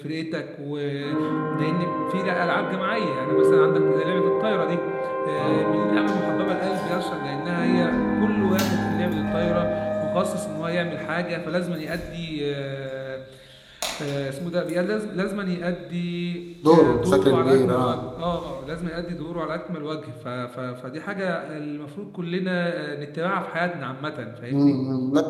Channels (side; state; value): both; identical; correlation 1.00